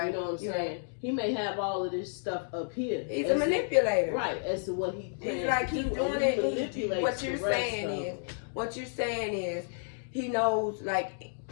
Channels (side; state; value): right; silent; digital silence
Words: You know what I'm saying? Right. He may have all of this stuff up here. He's a manipulator. Right, as to what he plans. It's like he's doing it. What you're saying is he knows like